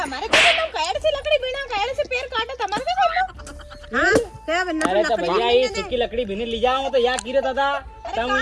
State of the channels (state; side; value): identical; both; correlation 1.00